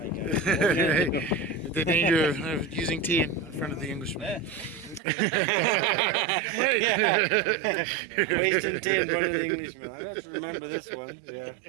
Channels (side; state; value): left; drops out; at 5.0 s